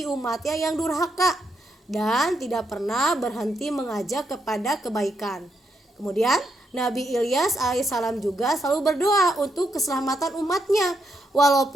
umatnya yang durhaka dan tidak pernah berhenti mengajak kepada kebaikan. Kemudian Nabi Ilyas alaihissalam juga selalu berdoa untuk keselamatan umatnya,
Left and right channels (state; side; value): normal; both; correlation 0.79